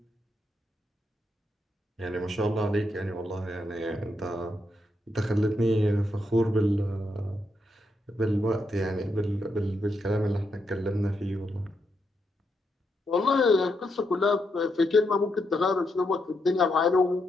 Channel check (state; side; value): normal; both; correlation 0.81